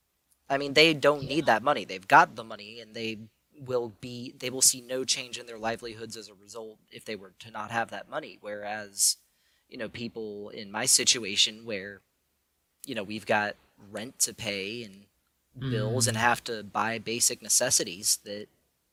I mean, they don't yeah. need that money. They've got the money, and they will see no change in their livelihoods as a result if they were to not have that money. Whereas, people in my situation where we've got rent to pay and bills and Mm. have to buy basic necessities that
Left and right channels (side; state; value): both; identical; correlation 1.00